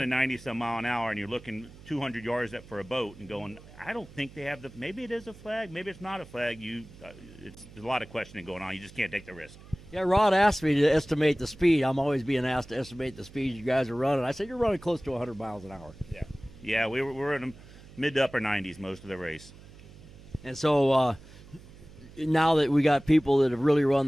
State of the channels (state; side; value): noise; right; hum, 20 dB below the sound